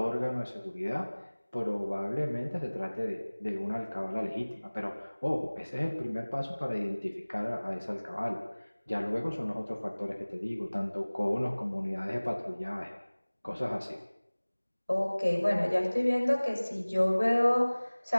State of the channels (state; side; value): inverted; both; correlation -1.00